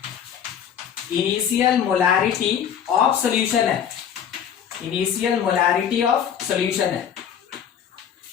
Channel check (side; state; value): right; quieter; 8.6 dB